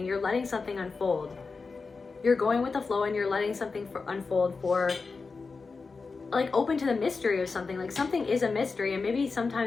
You're letting something unfold. You're going with the flow, and you're letting something unfold for, like, open to the mystery of something. Like, something is a mystery, and maybe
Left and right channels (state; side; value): quieter; right; 4.4 dB